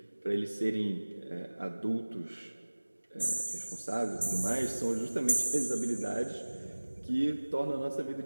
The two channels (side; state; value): both; inverted; correlation -1.00